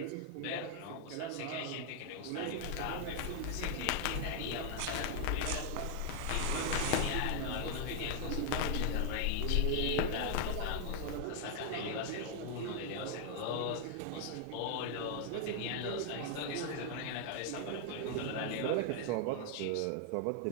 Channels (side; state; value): both; different; correlation 0.00